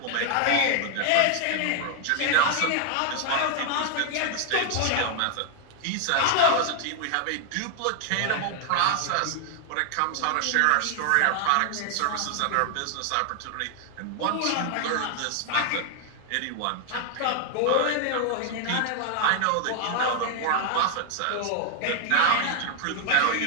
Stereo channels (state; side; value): different; both; correlation 0.00